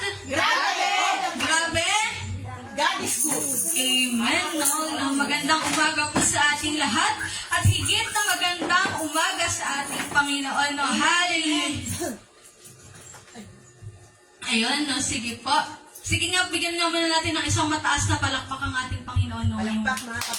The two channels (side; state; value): both; identical; correlation 1.00